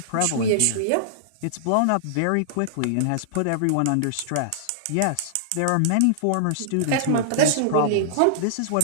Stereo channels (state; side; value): different; both; correlation -0.01